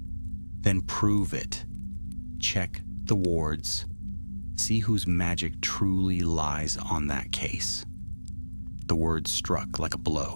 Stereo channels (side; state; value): both; inverted; correlation -1.00